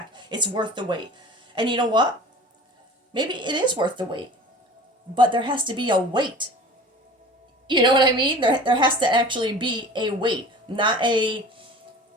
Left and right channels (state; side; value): normal; both; correlation 0.41